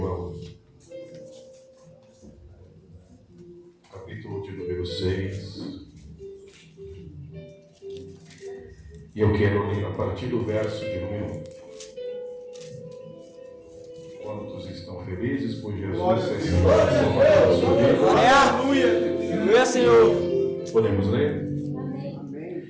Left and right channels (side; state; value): both; identical; correlation 1.00